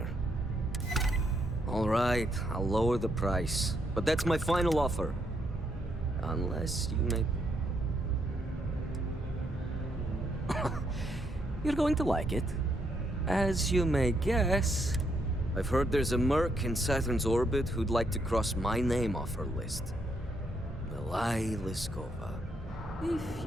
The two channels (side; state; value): both; normal; correlation 0.76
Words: All right, I'll lower the price. But that's my final offer. Unless you make... You're going to like it. As you may guess, I've heard there's a merc in Saturn's orbit who'd like to cross my name off her list. Milai Liskova. If